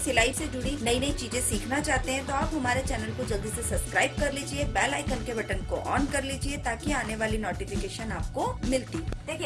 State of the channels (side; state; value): both; identical; correlation 1.00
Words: से जुड़ी नई नई चीजें सीखना चाहते हैं, तो आप हमारे चैनल को जल्दी से सब्सक्राइब कर लीजिए, बेल आइकन के बटन को ऑन कर लीजिए ताकि आने वाली नोटिफिकेशन आपको मिलती।